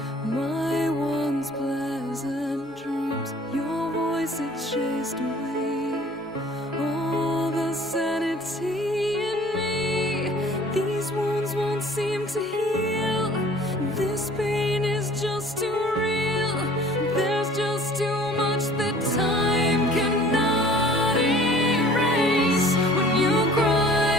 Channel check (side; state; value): both; normal; correlation 0.50